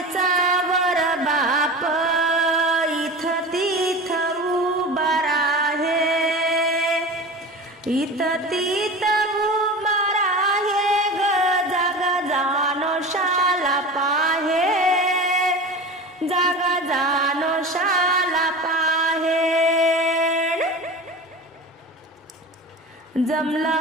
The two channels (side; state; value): both; normal; correlation 0.32